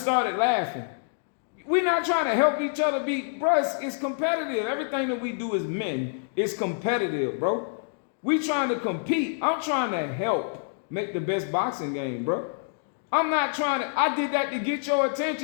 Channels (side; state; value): right; silent; digital silence